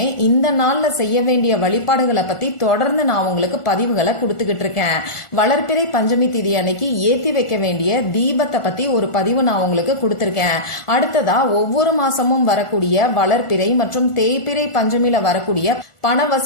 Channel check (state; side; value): late; right; 1.4 ms